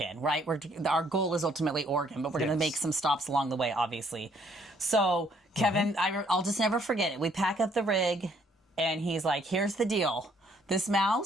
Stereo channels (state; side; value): normal; both; correlation 0.66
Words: right? Our goal is ultimately Oregon, but we're going to make some stops along the way, obviously. So Kevin, I'll just never forget it. We pack up the rig, and he's like, here's the deal. this